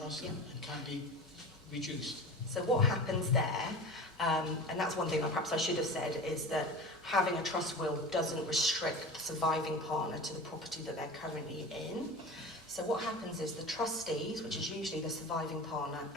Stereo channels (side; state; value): both; normal; correlation 0.33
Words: Yeah. and can't be reduced? So what happens there, and that's one thing perhaps I should have said, is that having a trust will doesn't restrict the surviving partner to the property that they're currently in. So what happens is the trustees, which is usually the surviving partner